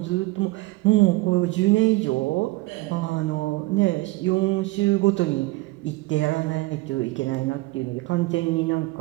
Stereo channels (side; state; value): left; quieter; 21.4 dB